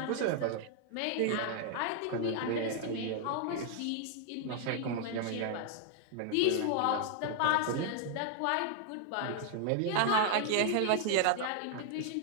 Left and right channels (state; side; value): different; both; correlation 0.00